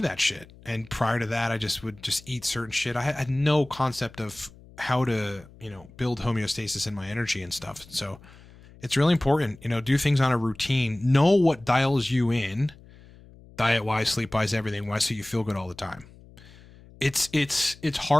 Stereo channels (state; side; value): noise; left; hum, 22 dB below the sound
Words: that shit. And prior to that, I would eat certain shit. I had no concept of how to, build homeostasis in my energy and stuff. So it's really important, do things on a routine, know what dials you in, diet wise, sleep wise, everything wise, so you feel good all the time. It's